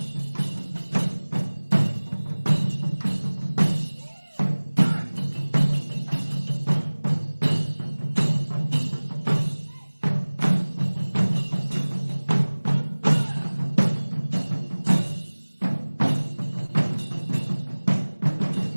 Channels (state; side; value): inverted; both; correlation -1.00